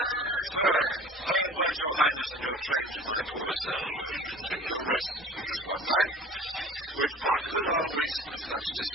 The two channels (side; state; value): both; normal; correlation 0.43